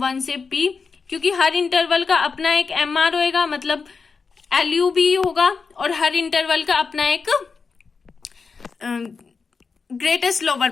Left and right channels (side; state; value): right; quieter; 5.0 dB